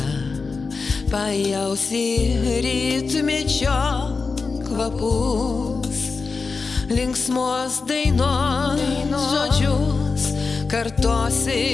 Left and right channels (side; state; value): right; quieter; 4.5 dB